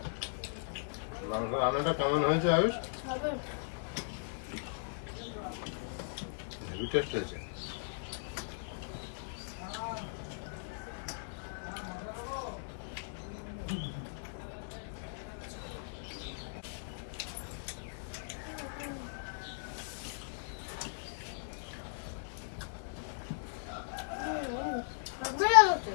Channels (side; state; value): right; silent; digital silence